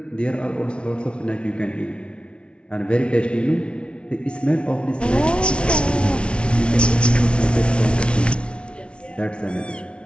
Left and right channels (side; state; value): right; late; 0.058 ms